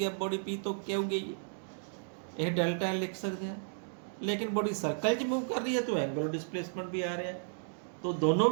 बॉडी पी तो क्या हो गई, ये डेल्टा एल लिख सकते हैं। लेकिन बॉडी सर्कल च मूव कर रही है तो एंगुलर डिसप्लेसमेंट भी आ रहा है, तो दोनों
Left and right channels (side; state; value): left; silent; digital silence